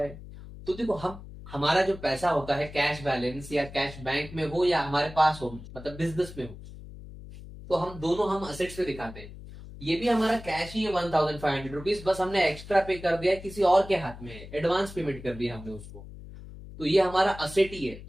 तो देखो, हम हमारा जो पैसा होता है कैश बैलेंस या कैश बैंक में हो या हमारे पास हो, मतलब बिजनेस में हो, तो हम दोनों हम असेट्स पे दिखाते हैं। ये भी हमारा कैश ही है 1,500 रुपीज, बस हमने एक्स्ट्रा पे कर दिया, किसी और के हाथ में है, एडवांस पेमेंट कर दिया हमने उसको। तो ये हमारा असेट ही है।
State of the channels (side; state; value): left; noise; hum, 15 dB below the sound